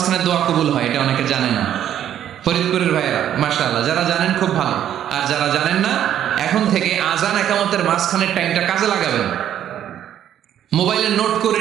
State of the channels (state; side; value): quieter; left; 10.6 dB